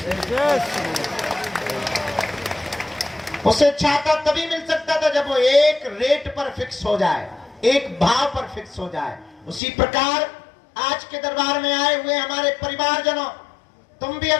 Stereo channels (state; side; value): drops out; right; at 9.6 s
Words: उसे छाता तभी मिल सकता था जब वो एक रेट पर फिक्स हो जाए, एक भाव पर फिक्स हो जाए। उसी प्रकार आज के दरबार में आए हुए हमारे परिवारजनों, तुम भी